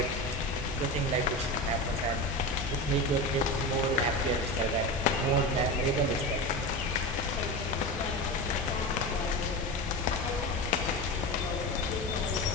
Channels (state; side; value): normal; both; correlation 0.24